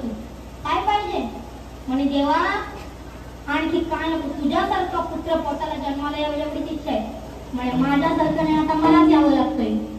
तू? काय पाहिजे? म्हणे देवा आणखी काय नको, तुझ्यासारखा पुत्र पोटाला जन्माला यावं एवढीच इच्छा आहे। म्हणे माझ्यासारखं नाही, आता मलाच यावं लागतंय।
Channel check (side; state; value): both; identical; correlation 1.00